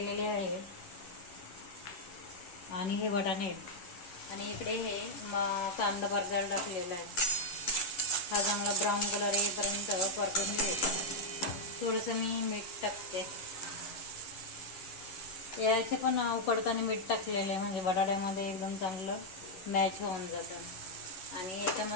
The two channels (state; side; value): late; right; 11 ms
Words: आहे आणि हे वाटाणे आणि इकडे हे कांदा परतायला टाकलेला आहे। हा चांगला ब्राऊन कलर येईपर्यंत परतून घ्यायचा। थोडंसं मी मीठ टाकते, याचे पण उकडताना मीठ टाकलेलं आहे म्हणजे बटाट्यामध्ये एकदम चांगलं मॅच होऊन जातं। आणि